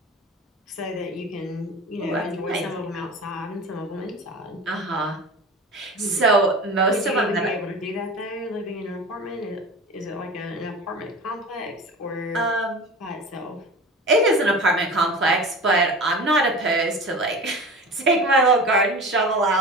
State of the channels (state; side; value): normal; both; correlation 0.34